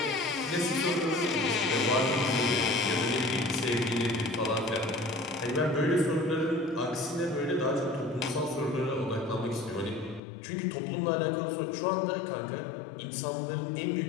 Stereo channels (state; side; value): drops out; right; at 10.2 s